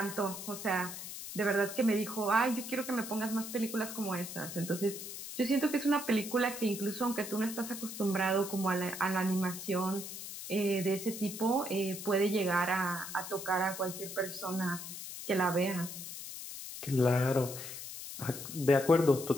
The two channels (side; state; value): left; noise; hiss, 9 dB below the sound